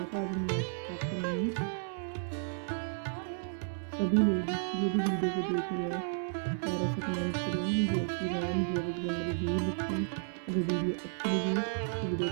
था, आज हम यहाँ से स्टार्ट करेंगे। सभी लोग जो भी वीडियो को देख रहे हैं प्यारा सा कमेंट करें, जय श्री राम जय बजरंगबली जरूर लिखें। अगर वीडियो अच्छी लगे तो वीडियो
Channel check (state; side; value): silent; left; digital silence